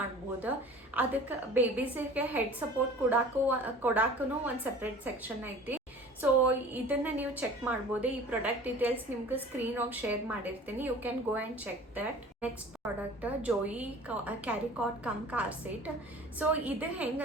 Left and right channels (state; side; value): normal; both; correlation 0.44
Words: ಅದಕ್ಕೆ ಬೇಬೀಸಿಗೆ ಹೆಡ್ ಸಪೋರ್ಟ್ ಕೊಡಾಕೂ ಒಂದು ಸಪ್ರೇಟ್ ಸೆಕ್ಷನ್ ಐತಿ. ಸೊ ಇದನ್ನು ನೀವು ಚೆಕ್ ಮಾಡ್ಬೋದು. ಈ ಪ್ರಾಡಕ್ಟ್ ಡೀಟೇಲ್ಸ್ ನಿಮ್ಗೆ ಸ್ಕ್ರೀನ್ ಆಗಿ ಶೇರ್ ಮಾಡಿರ್ತೀನಿ. You can go and check that. Next product Joie carrycot cum car seat. So ಇದು